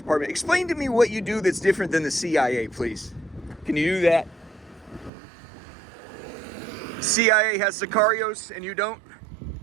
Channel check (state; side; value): drops out; left; at 5.1 s